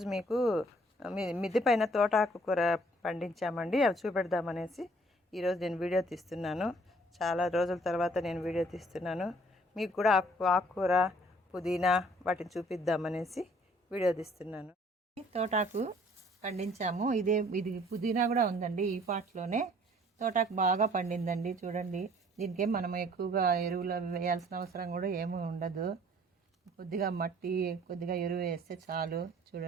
మీకు మిద్దె పైన తోటాకు కూర పండించామండి. అవి చూపెడదామనేసి ఈరోజు నేను వీడియో తీస్తున్నాను. చాలా రోజుల తర్వాత నేను వీడియో తీస్తున్నాను. మీకు కూడా ఆకుకూర, పుదీనా వాటిని చూపిద్దామనేసి వీడియో తీస్తున్నాను. తోటాకు పండించాము. ఇది పుదీనా కూడా ఉందండి. ఈ పాట్లోనే తోటాకు బాగా పండిందండి. చూడండి, దీనికేం మనం ఎక్కువగా ఎరువులు వేయాల్సిన అవసరం కూడా ఏమీ ఉండదు. కొద్దిగా మట్టి, కొద్దిగా ఎరువు వేస్తే చాలు.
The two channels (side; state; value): both; normal; correlation 0.58